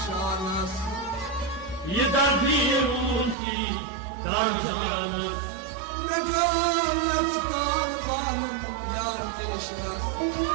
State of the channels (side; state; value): left; drops out; at 3.4 s